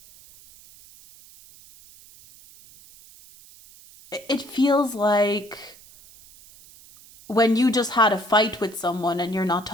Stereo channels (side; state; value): right; noise; hiss, 23 dB below the sound